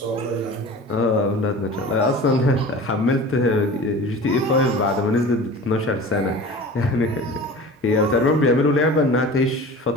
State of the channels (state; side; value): normal; both; correlation 0.38